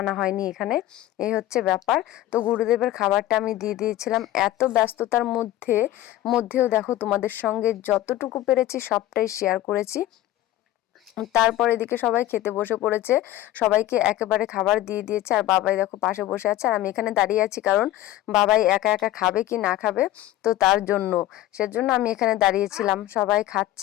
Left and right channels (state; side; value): quieter; right; 14.4 dB